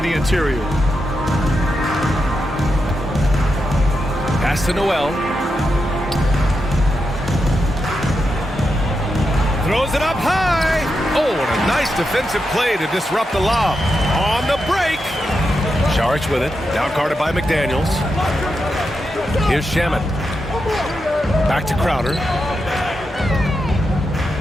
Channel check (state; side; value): normal; both; correlation 0.86